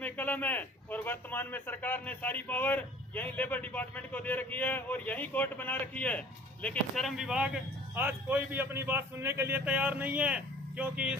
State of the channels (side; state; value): both; normal; correlation 0.48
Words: कलम है, और वर्तमान में सरकार ने सारी पावर यही लेबर डिपार्टमेंट को दे रखी है और यही कोर्ट बना रखी है। लेकिन श्रम विभाग आज कोई भी अपनी बात सुनने के लिए तैयार नहीं है, क्योंकि